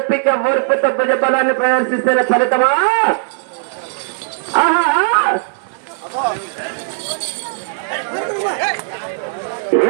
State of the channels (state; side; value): silent; left; 67 dB below the other